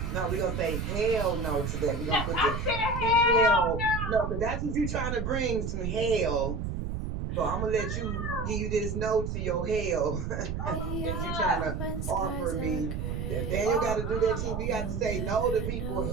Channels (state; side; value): noise; right; rumble, 3 dB below the sound